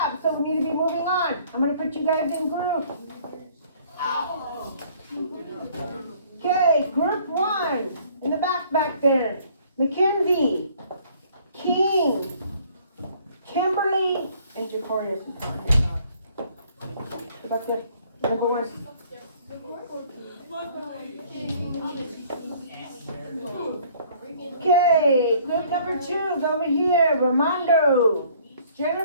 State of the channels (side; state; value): both; inverted; correlation -0.57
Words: so we need to be moving on. I'm going to put you guys in groups. Okay, group 1 in the back there. Mackenzie, King, Kimberly, and Jacorius. About the number 1. Okay, group number 2 is over here. Ramondo,